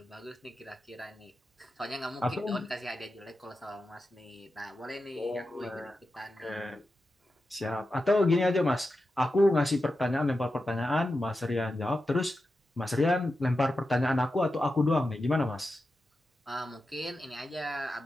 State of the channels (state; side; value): normal; both; correlation 0.91